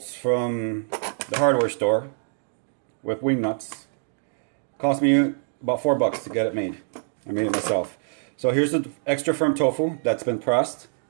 from the hardware store with wing nuts. Cost me about $4 to get it made. I made it myself. So here's the extra firm tofu that's been pressed.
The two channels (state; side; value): silent; left; digital silence